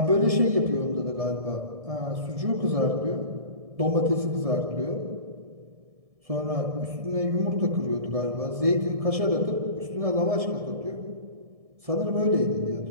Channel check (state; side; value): late; left; 1.7 ms